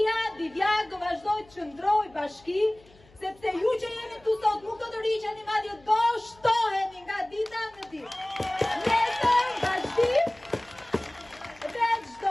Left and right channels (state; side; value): noise; left; hum, 28 dB below the sound